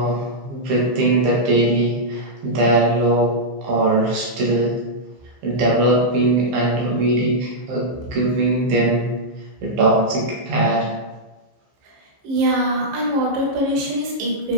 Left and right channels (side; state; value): left; late; 15 ms